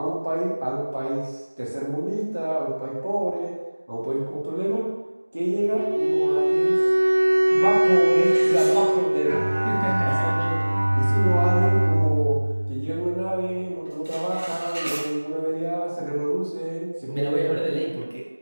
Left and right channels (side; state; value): both; inverted; correlation -1.00